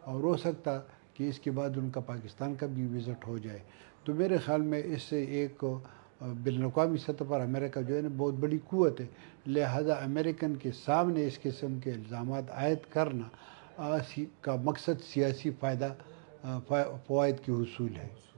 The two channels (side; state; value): left; silent; digital silence